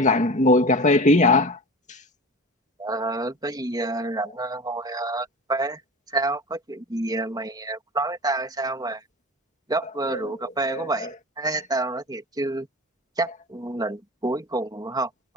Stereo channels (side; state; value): both; normal; correlation 0.32